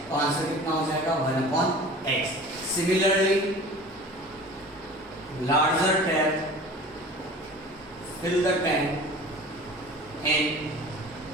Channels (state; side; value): normal; both; correlation 0.40